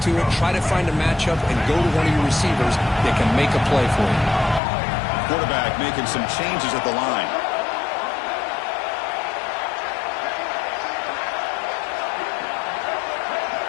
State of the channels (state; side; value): drops out; right; at 4.6 s